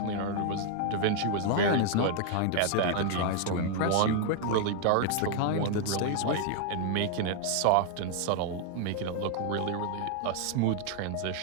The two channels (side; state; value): both; different; correlation 0.00